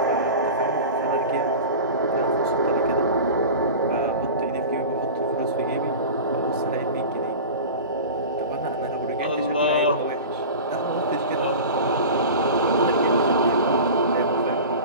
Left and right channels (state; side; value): inverted; both; correlation -0.33